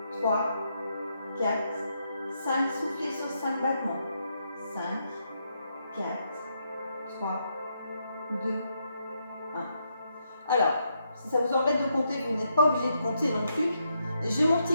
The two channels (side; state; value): both; inverted; correlation -0.79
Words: 3, 4, 5. Soufflez sur 5 battements. 5, 4, 3, 2, 1. Alors, si ça vous embête de compter, vous n'êtes pas obligé de compter non plus. J'ai mon